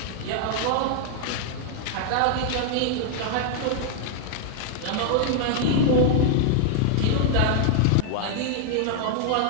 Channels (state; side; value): different; both; correlation 0.00